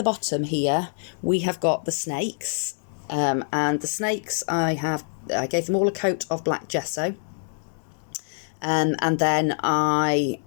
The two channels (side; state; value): right; silent; 62 dB below the other